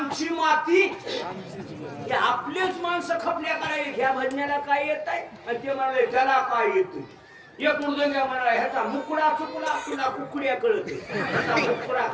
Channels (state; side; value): identical; both; correlation 1.00